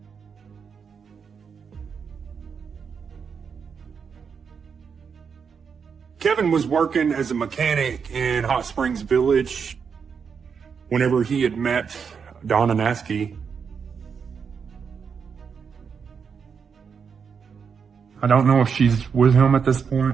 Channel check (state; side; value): quieter; left; 6.3 dB